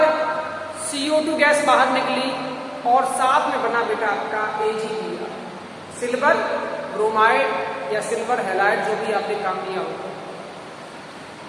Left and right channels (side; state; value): both; identical; correlation 1.00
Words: CO2 गैस बाहर निकली और साथ में बना बेटा आपका AgBr सिल्वर ब्रोमाइड या सिल्वर हैलाइड जो भी आपने काम लिया होगा।